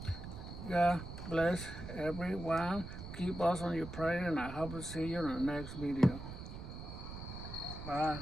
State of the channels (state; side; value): noise; right; rumble, 9 dB below the sound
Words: God bless everyone. Keep us on your prayer, and I hope to see you in the next video.